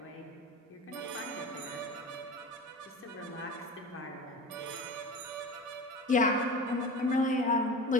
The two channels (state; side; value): normal; both; correlation 0.32